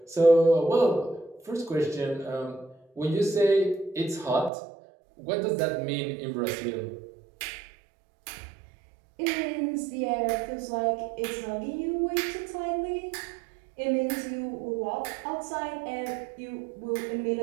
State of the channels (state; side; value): drops out; left; at 4.5 s